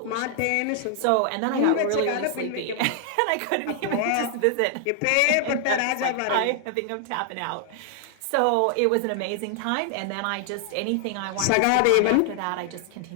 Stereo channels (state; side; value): different; both; correlation 0.00